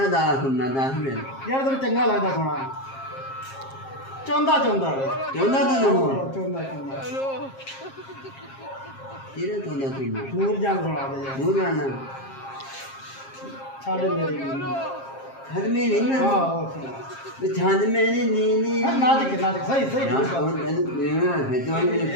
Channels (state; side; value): late; right; 7.5 ms